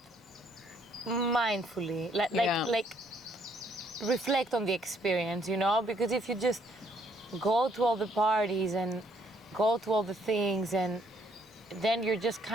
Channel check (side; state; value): both; normal; correlation 0.67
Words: mindfully, like reflect on the experience, you know? Because if you just go to all the parties and go to all the things, and then you're just